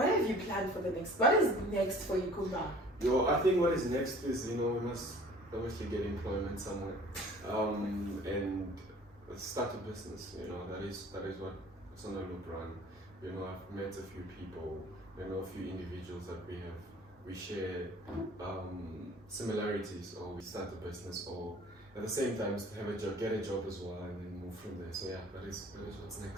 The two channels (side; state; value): both; normal; correlation 0.50